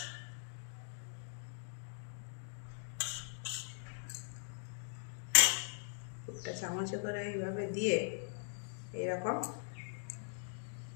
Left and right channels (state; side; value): silent; right; digital silence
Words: পুরটা চামচে করে এইভাবে দিয়ে এরকম